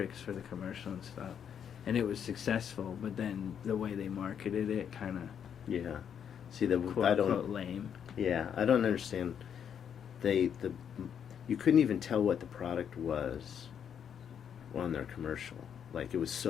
for the commercial and stuff. And it was successful, but then the way they marketed it kind of See, quote lame. Yeah, I don't understand. You couldn't even tell what the product was on their commercial. Like, it was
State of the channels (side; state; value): right; quieter; 8.3 dB